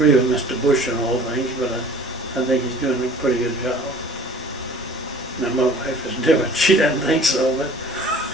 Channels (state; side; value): normal; both; correlation 0.48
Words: with Mr. Bush on all things, but I think he's doing a pretty good job. Now my wife is different. She doesn't think so,